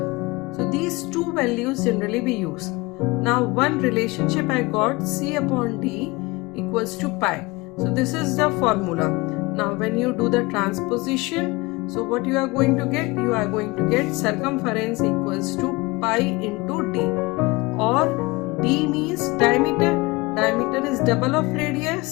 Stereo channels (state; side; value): quieter; right; 23.5 dB